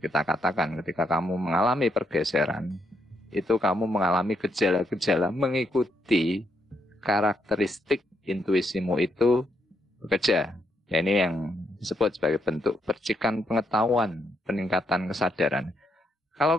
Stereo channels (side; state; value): both; normal; correlation 0.77